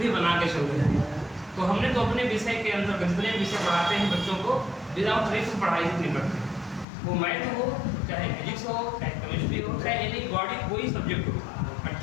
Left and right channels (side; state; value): right; drops out; at 6.9 s